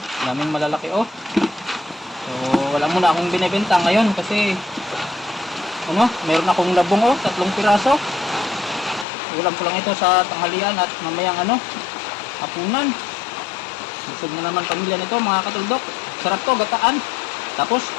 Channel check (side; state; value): right; drops out; at 9.1 s